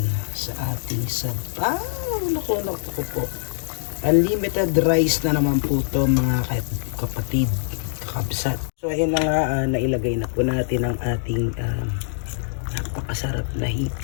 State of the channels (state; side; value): silent; right; digital silence